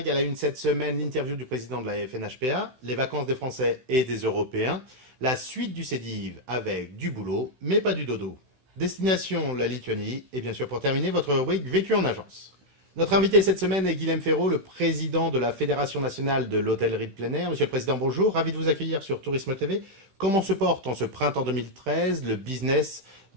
À la une cette semaine, l'interview du président de la FNHPA, les vacances des Français et des Européens, la suite du CEDIV avec du boulot, mais pas du dodo. Destination la Lituanie et bien sûr pour terminer, votre rubrique Vécu en agence. Notre invité cette semaine est Guilhem Ferraud, le président de la Fédération nationale de l'hôtellerie de plein air. Monsieur le Président, bonjour, ravi de vous accueillir sur Tourisme TV. Comment se porte en ce printemps 2013 le business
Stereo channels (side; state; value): left; late; 16 ms